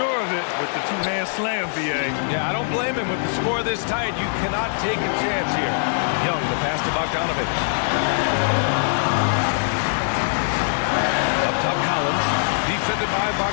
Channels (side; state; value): right; silent; digital silence